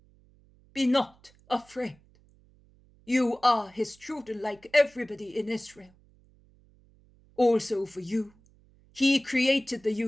Be not afraid. You are his children like everybody in Israel. Also for you, He created the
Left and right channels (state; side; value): noise; right; hum, 30 dB below the sound